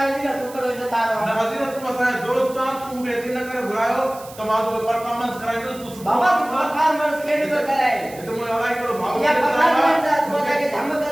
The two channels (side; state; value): right; noise; hiss, 19 dB below the sound